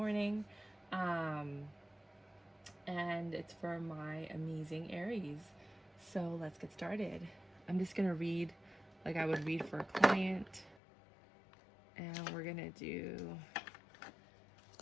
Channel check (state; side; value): drops out; right; at 10.8 s